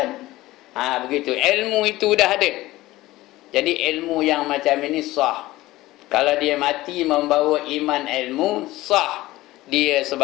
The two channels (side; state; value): right; quieter; 17.6 dB